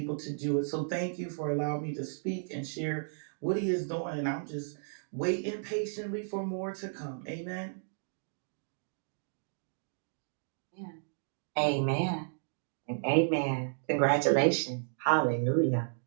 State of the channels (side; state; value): left; silent; digital silence